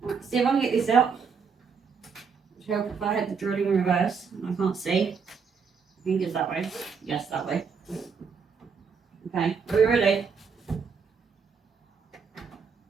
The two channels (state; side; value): quieter; left; 5.8 dB